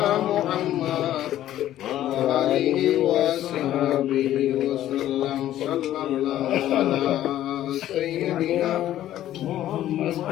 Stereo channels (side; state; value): right; quieter; 12.8 dB